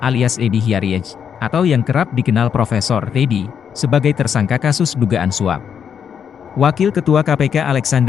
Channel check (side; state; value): right; quieter; 7.7 dB